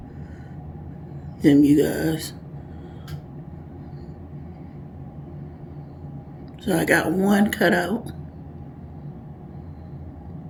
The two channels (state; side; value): identical; both; correlation 1.00